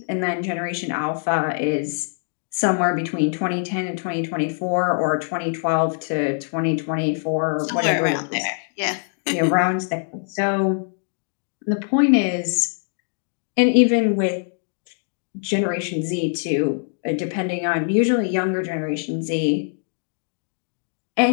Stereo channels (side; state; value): right; silent; 62 dB below the other